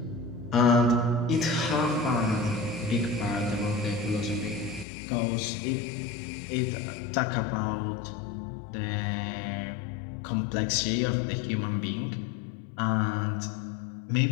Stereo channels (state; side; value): drops out; right; at 4.9 s